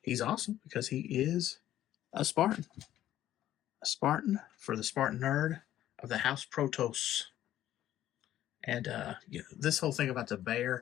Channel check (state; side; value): quieter; right; 12.7 dB